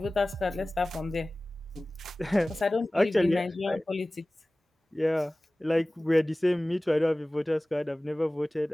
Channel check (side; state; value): both; normal; correlation 0.98